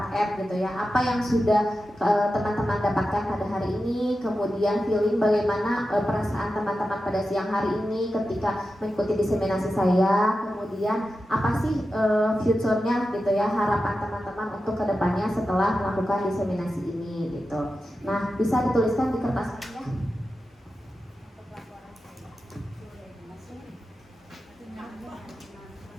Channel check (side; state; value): both; normal; correlation 0.91